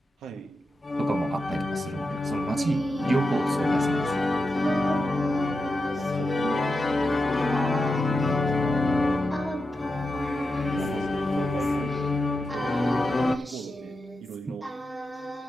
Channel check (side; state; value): both; normal; correlation 0.89